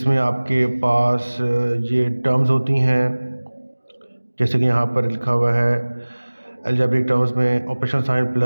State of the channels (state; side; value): inverted; both; correlation -1.00